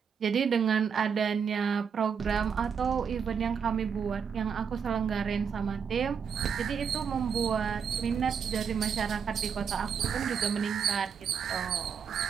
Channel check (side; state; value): left; quieter; 6.8 dB